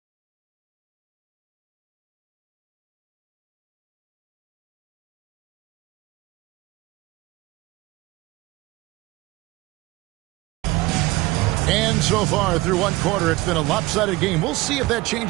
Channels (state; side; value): quieter; left; 20.8 dB